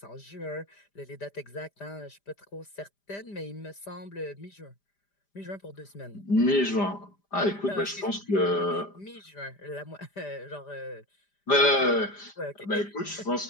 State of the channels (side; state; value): right; late; 5.0 ms